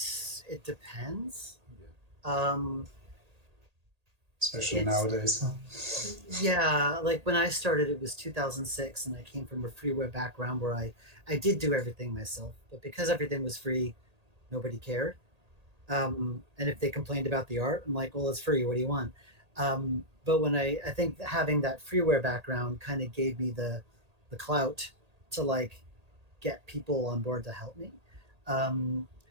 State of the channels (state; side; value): late; left; 1.8 ms